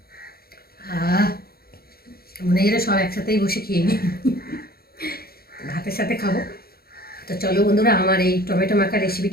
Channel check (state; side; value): late; right; 0.44 ms